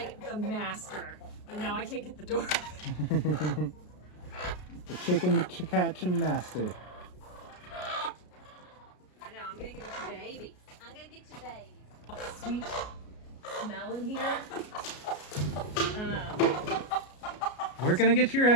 the master, but now I can't get the door. The chicken catching master. I know, I'm gonna get you baby. I'm gonna get you baby. Sweet smell in here. We're gonna get your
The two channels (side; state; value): right; late; 33 ms